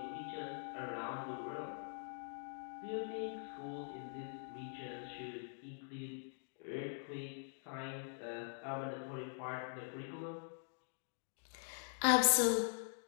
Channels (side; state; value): right; silent; digital silence